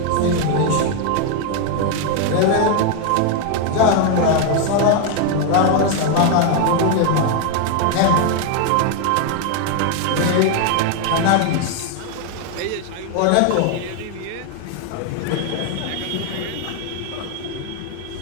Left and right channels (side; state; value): both; different; correlation 0.01